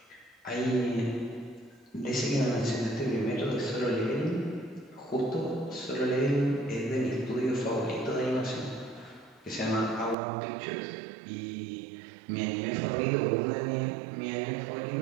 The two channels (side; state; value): left; drops out; at 10.2 s